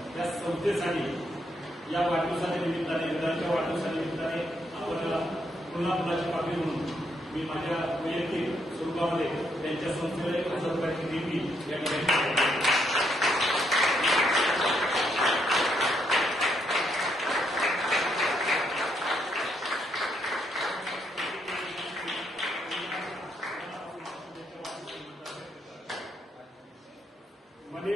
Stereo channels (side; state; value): both; normal; correlation 0.75